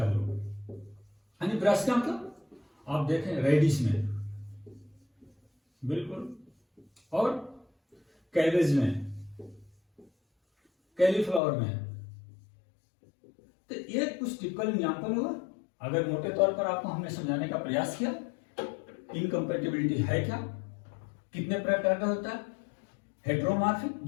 ग्रुप, यानी ब्रासिका मतलब आप देखें रेडिश में, बिल्कुल। और कैबेज में, कैलीफ्लावर में। तो ये कुछ टिपिकल एग्जांपल हुआ। अगर मोटे तौर पर आपको हमने समझाने का प्रयास किया, इनकम्पेटिबिलिटी है क्या, कितने प्रकार का होता है? हेट्रोमॉर्फिक,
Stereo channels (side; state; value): right; drops out; at 11.4 s